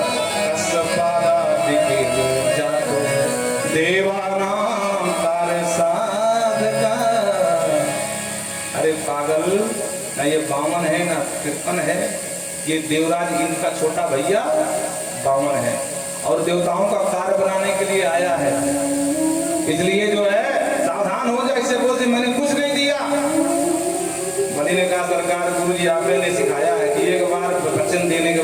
जातो देवानाम कार्य साधका। अरे पागल, ना ये बामन है ना कृपन है, ये देवराज इनका छोटा भैया बामन है और देवताओं का कार्य बनाने के लिए आया है। इसलिए जो है सावधान हो जाए, इससे बोलते मैंने कुछ नहीं दिया। बलि ने कहा सरकार गुरु जी आपने सिखाया है कि एक बार वचन देने के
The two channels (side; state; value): both; identical; correlation 1.00